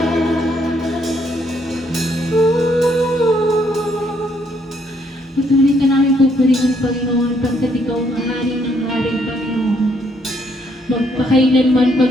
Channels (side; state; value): both; normal; correlation 0.70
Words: Patuloy ka namin pupurihin, Panginoon, pagkat ikaw ang hari ng hari, Panginoon. Magpakailanman,